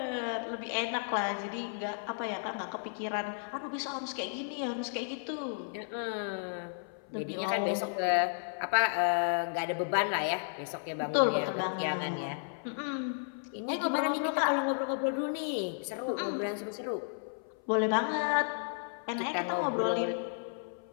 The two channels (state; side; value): silent; right; 56 dB below the other